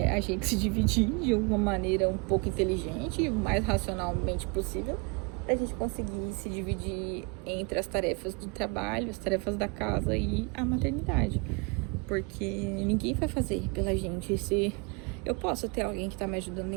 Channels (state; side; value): quieter; left; 31.9 dB